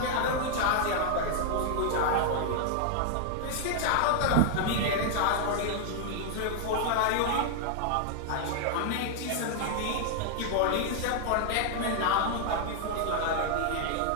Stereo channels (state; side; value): different; both; correlation 0.00